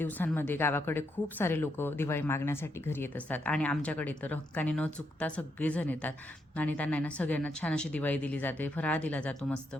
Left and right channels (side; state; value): both; normal; correlation 0.79